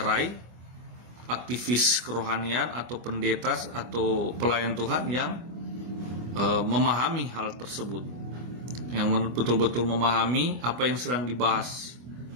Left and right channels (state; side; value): late; left; 24 ms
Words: aktivis kerohanian atau pendeta atau pelayan Tuhan yang memahami hal tersebut, yang betul-betul memahami apa yang sedang dibahas